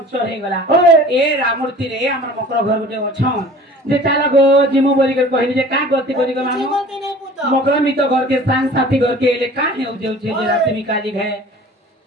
हे गला ए रामुर तीरे हमर मकर घर गुटे अछन जे चाला गो जिमु बोली कर कहली जे का गति करी गो मामू मकर मी तो घर के संग साथी घर के ले का हेउ जेउ छे जे राती मी काली घे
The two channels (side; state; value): both; normal; correlation 0.45